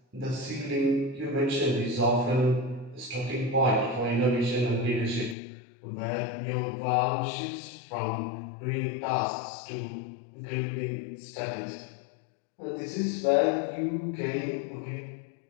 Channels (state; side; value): drops out; right; at 5.4 s